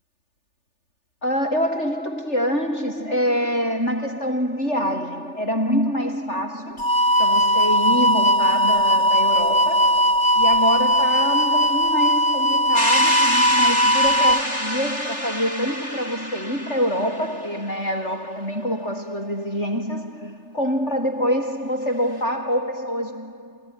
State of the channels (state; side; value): late; right; 3.4 ms